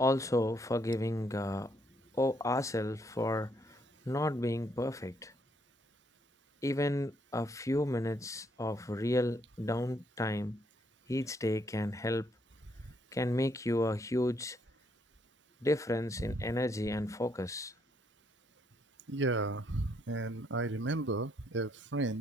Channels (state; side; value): normal; both; correlation 0.72